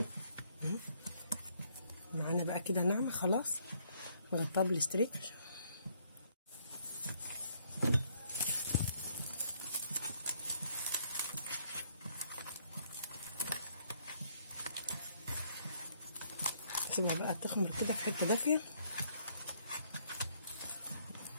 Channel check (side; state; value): both; inverted; correlation -0.69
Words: معانا بقى كده ناعمه خلاص. نغطيها بالاستريتش. نسيبها بقى تخمر كده في حته دافيه